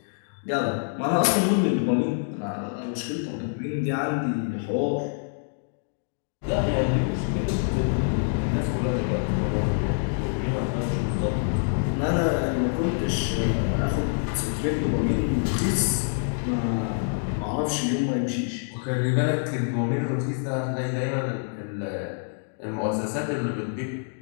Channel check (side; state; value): right; silent; digital silence